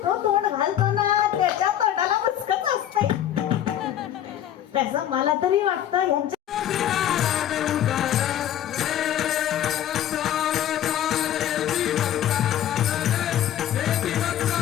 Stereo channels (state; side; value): quieter; right; 11.1 dB